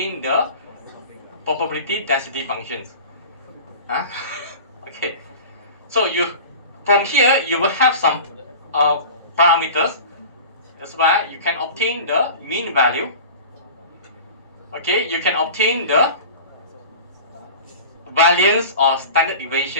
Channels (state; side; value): inverted; both; correlation -0.36